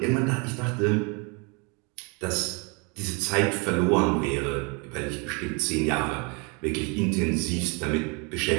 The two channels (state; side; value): quieter; left; 32.1 dB